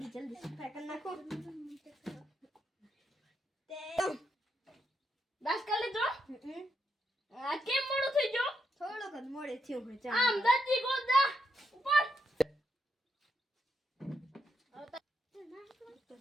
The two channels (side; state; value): both; normal; correlation 0.80